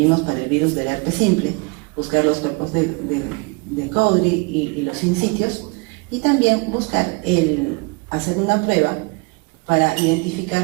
para el virus del herpes simple, buscar los cuerpos de Cowdry y los sinsitios, y también hacer una prueba para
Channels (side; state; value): left; quieter; 29.8 dB